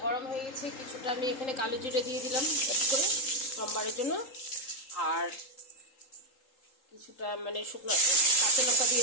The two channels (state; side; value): late; right; 3.8 ms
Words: গরম হয়ে গেছে, কিছুটা আমি এখানে কালো জিরে দিয়ে দিলাম অ্যাড করে সোমবারের জন্য, আর কিছুটা শুকনো কাঁচা লঙ্কা